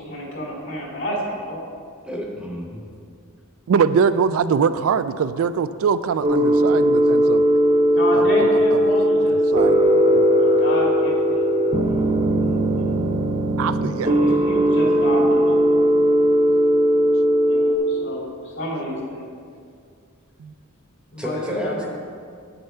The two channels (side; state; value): both; normal; correlation 0.62